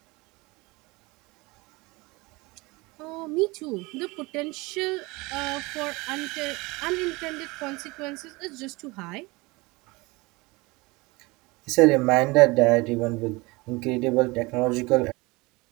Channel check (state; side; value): quieter; left; 23.9 dB